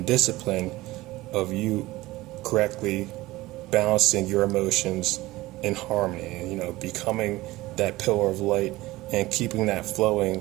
discipline of you correctly balancing your emotions in harmony, becoming that pillar of light and keeping that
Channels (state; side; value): quieter; left; 18.7 dB